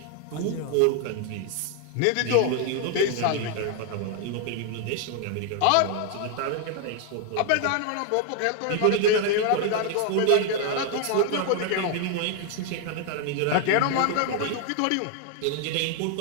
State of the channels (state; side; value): different; both; correlation 0.00